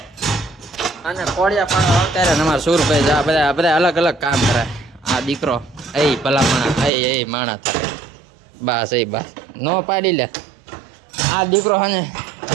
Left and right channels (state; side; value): drops out; left; at 6.9 s